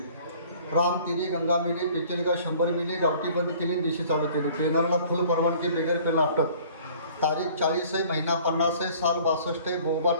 राम तिरी, गंगा मिली, पिचलगा 100 मिली, गावठी बंद केली, दिशी चालू केली. ट्रेनरला फुल परवानगी, बेगर पेन अटक. तारीख 40 आहे, महिना 50 आहे, साल 62 आहे,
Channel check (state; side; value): inverted; both; correlation -0.52